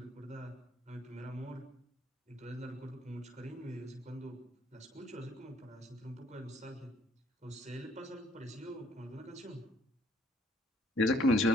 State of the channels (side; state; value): both; normal; correlation 0.64